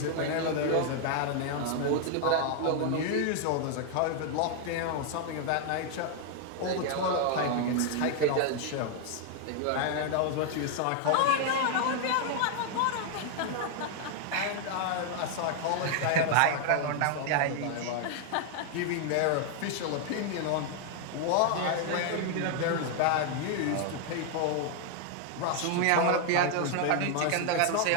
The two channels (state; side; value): different; both; correlation 0.00